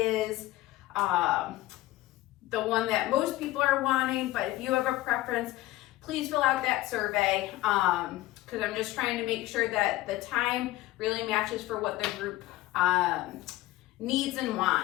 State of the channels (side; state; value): right; quieter; 17.1 dB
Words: the one that most people are wanting, but if you have a preference, please fill out that survey because I'm just trying to make sure that the time really matches for what the group needs and